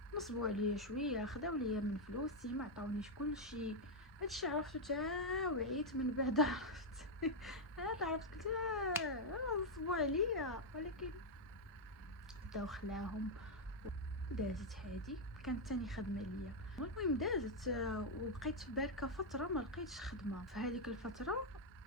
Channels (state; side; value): normal; both; correlation 0.00